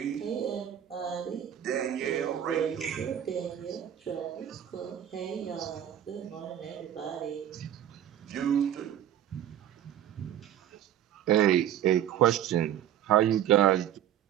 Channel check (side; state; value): left; quieter; 10.8 dB